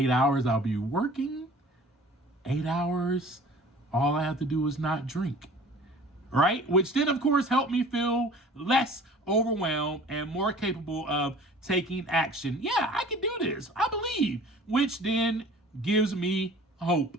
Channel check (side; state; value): both; normal; correlation 0.46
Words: hours I'll be working, 8 hours all I have to do is not drink. Right? Which then, of course, helped me feel less overwhelmed and more capable of taking action. Yeah, I can do this. I believe. Which then gives me hope.